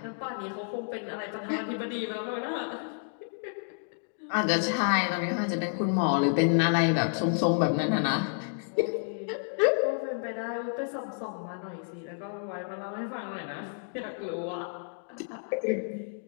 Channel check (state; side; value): silent; right; digital silence